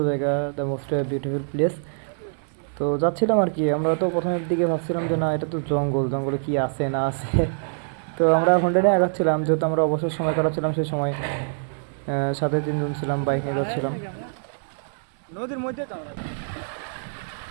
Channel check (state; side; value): silent; left; 62 dB below the other